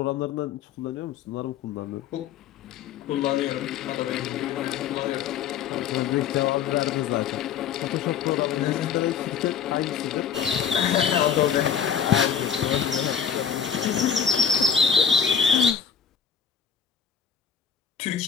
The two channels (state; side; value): quieter; right; 7.3 dB